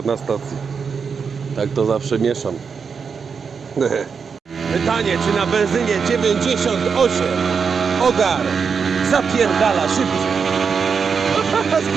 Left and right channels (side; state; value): left; quieter; 5.9 dB